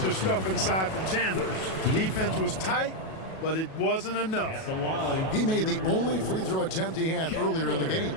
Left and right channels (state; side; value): late; right; 37 ms